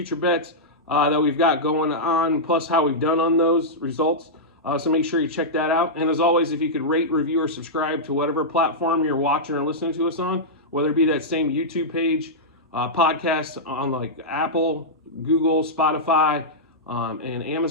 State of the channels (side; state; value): both; normal; correlation -0.10